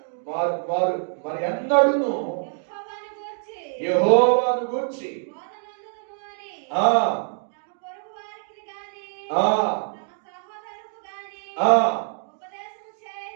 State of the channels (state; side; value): silent; left; digital silence